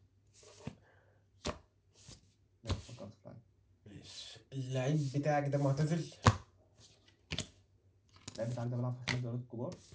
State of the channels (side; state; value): both; identical; correlation 1.00